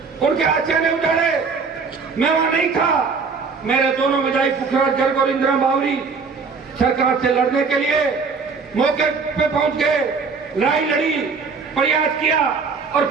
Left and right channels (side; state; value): left; quieter; 4.9 dB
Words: उनके आशियाने उजाड़े, मैं वहां नहीं था। मेरे दोनों विधायक पुखराज गर्ग और इंदिरा बावरी सरकार से लड़ने के लिए मौके पे पहुंच गए, लड़ाई लड़ी, प्रयास किया और